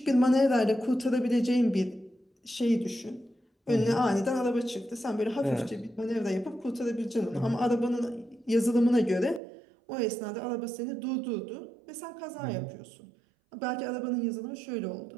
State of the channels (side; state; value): left; drops out; at 9.4 s